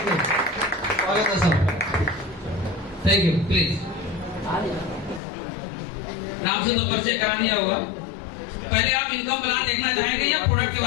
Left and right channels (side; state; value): right; drops out; at 5.2 s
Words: से। स्वागत है सर। Thank you. प्लीज नाम से तो परिचय करा दिया होगा। पहले आप इनकम प्लान देखना चाहेंगे या प्रोडक्ट के